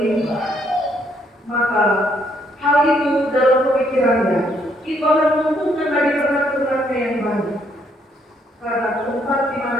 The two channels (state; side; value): normal; both; correlation 0.71